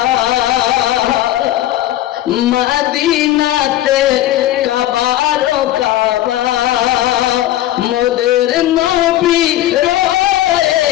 মদিনাতে কাবার কাবা মোদের নবী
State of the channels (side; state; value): right; quieter; 14.0 dB